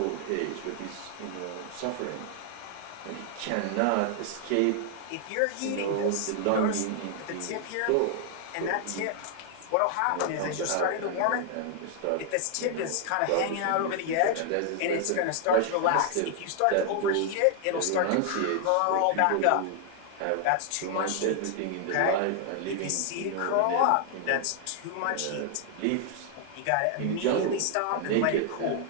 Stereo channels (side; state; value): both; different; correlation 0.00